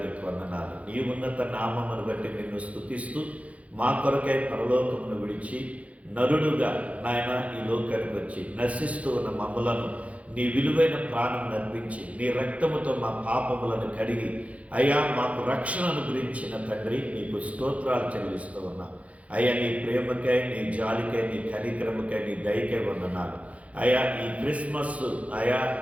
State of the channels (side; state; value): left; late; 0.065 ms